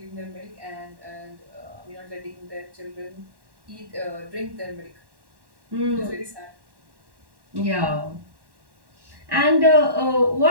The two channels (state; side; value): late; left; 1.1 ms